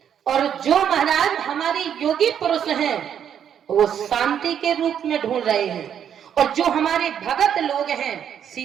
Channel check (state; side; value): quieter; left; 8.9 dB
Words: और जो महाराज हमारे योगी पुरुष हैं वो शांति के रूप में ढूंढ रहे हैं, और जो हमारे भगत लोग हैं